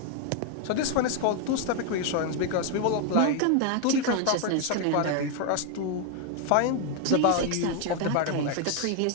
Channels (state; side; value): different; both; correlation 0.01